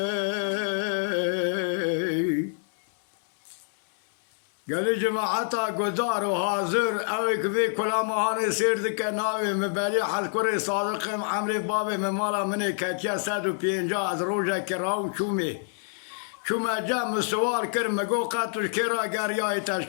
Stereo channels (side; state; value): right; silent; 60 dB below the other